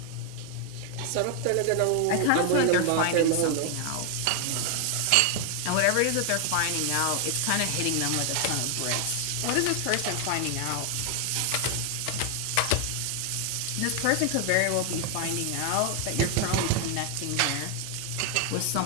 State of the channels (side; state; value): both; different; correlation 0.00